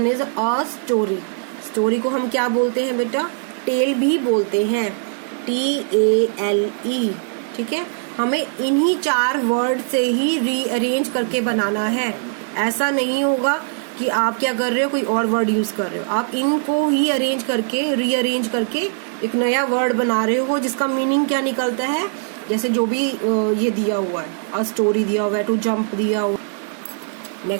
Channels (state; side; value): silent; left; 65 dB below the other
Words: is a story. Story को हम क्या बोलते हैं बेटा? टेल भी बोलते हैं, TALE, ठीक है। हमें इन्हीं 4 वर्ड से ही रीअरेंज करके बनाना है। ऐसा नहीं होगा कि आप क्या कर रहे हो, कोई और वर्ड यूज कर रहे हो, आप इनको ही अरेंज करके रीअरेंज करके एक नया वर्ड बना रहे हो जिसका मीनिंग क्या निकलता है, जैसे जो भी ये दिया हुआ है, अ स्टोरी दिया हुआ है, टू जंप दिया हुआ।